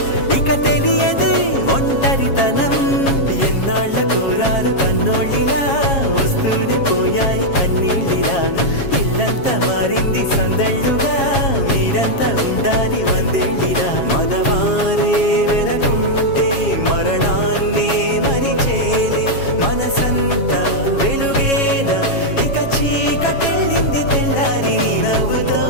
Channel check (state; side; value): late; right; 7.3 ms